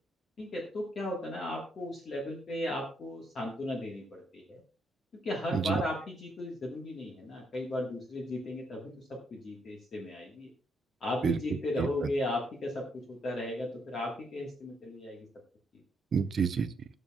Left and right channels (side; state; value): both; normal; correlation 0.75